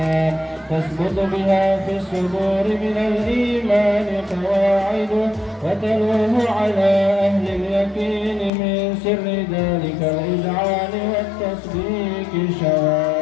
تثبت بها في الصدور من الإيمان قواعده، وتلوه على أهل اليقين من سر ذلك الإذعان والتصديق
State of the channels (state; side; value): drops out; right; at 8.5 s